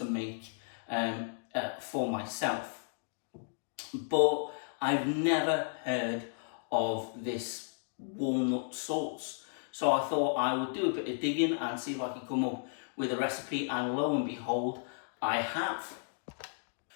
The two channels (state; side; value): silent; right; digital silence